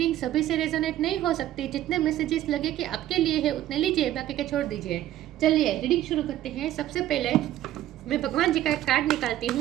सभी से रेजोनेट नहीं हो सकती। जितने मैसेजेस लगे कि आपके लिए है उतने लीजिए, बाकी के छोड़ दीजिए। चलिए रीडिंग शुरू करते हैं। सबसे पहले मैं भगवान जी का एक कार्ड निकालती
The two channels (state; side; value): quieter; left; 13.3 dB